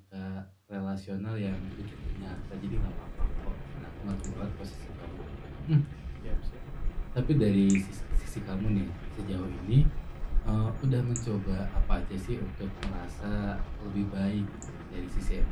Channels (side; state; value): both; identical; correlation 1.00